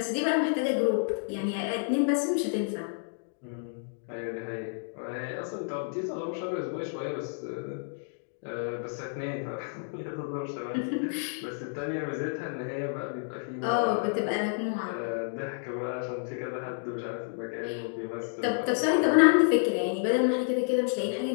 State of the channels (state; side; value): silent; right; digital silence